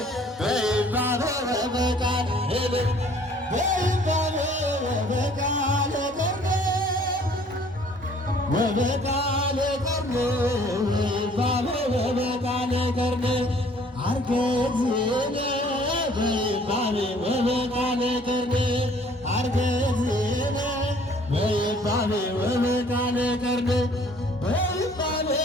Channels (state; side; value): normal; both; correlation 0.57